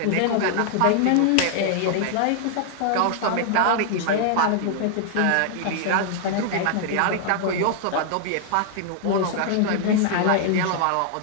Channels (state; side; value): different; both; correlation 0.00